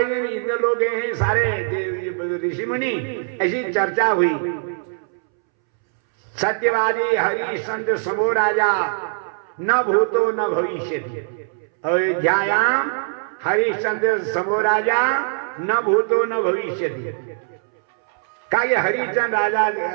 दिन इंद्र लोग गए हैं सारे ऋषि मुनि, ऐसी चर्चा हुई। सत्यवादी हरिश्चंद्र समो राजा न भूतो न भविष्यति, अयोध्यायाम हरिश्चंद्र समो राजा न भूतो न भविष्यति। कहा ये हरिश्चंद्र राजा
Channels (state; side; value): silent; left; 65 dB below the other